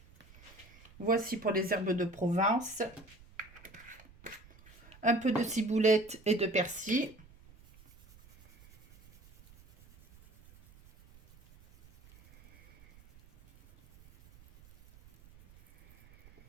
Voici pour les herbes de Provence. Un peu de ciboulette et de persil.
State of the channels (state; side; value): noise; right; rumble, 25 dB below the sound